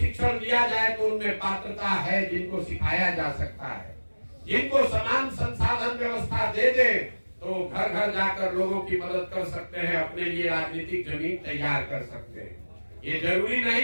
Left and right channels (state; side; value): inverted; both; correlation -1.00